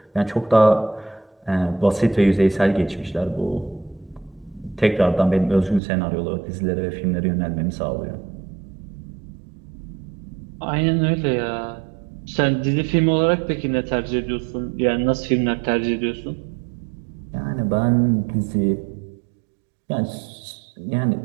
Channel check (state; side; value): drops out; left; at 5.8 s